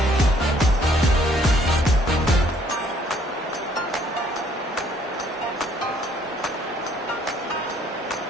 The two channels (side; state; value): both; normal; correlation 0.63